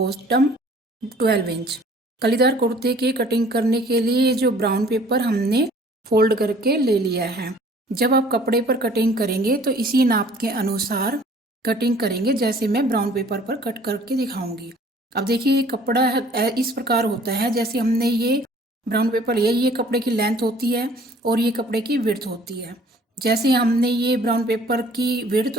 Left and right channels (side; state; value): both; normal; correlation 0.54